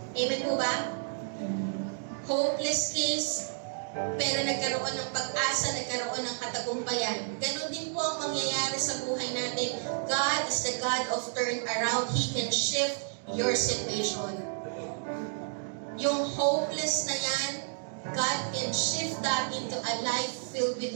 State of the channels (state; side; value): silent; left; digital silence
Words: Amen po ba? Hopeless case, pero nagkaroon ng pag-asa, nagkaroon ng katagumpayan. Ganon din po ang mangyayari sa buhay natin. God is the God of turnaround. He can shift your situation. Yung hopeless na yan, God can shift that into a life filled with